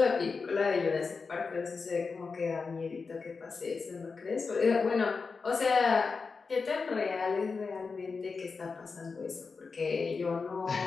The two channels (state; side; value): quieter; right; 4.7 dB